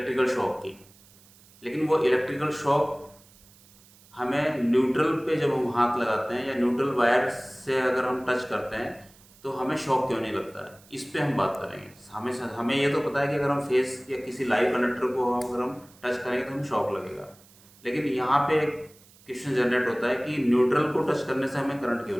शॉक की। लेकिन वो इलेक्ट्रिकल शॉक हमें न्यूट्रल पे जब हम हाथ लगाते हैं या न्यूट्रल वायर से अगर हम टच करते हैं तो हमें शॉक क्यों नहीं लगता है, इस पे हम बात करेंगे। हमें ये तो पता है कि अगर हम फेस या किसी लाइव कंडक्टर को अगर हम टच करेंगे तो हमें शॉक लगेगा। लेकिन यहाँ पे एक क्वेश्चन जनरेट होता है कि न्यूट्रल को टच करने से हमें करंट क्यों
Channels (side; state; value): right; noise; hiss, 26 dB below the sound